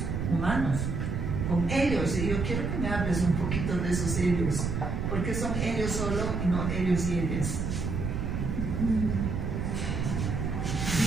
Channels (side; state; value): right; noise; rumble, 1 dB below the sound